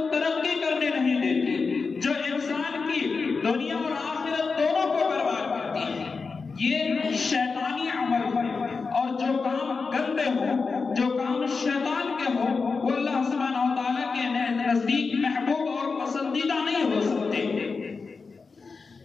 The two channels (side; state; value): right; quieter; 4.6 dB